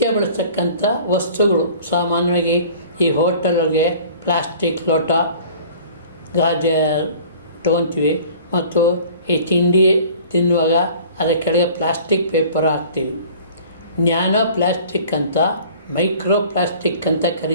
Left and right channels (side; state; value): both; inverted; correlation -0.48